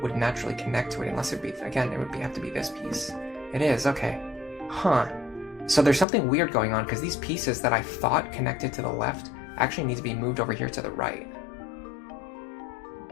would naturally connect to it unless it would be, again, it would have to be this piece. It is, okay. Huh. So there's something weird going on because these pieces that I thought connected to the left actually need to be moved over here to the right.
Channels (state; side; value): drops out; right; at 6.1 s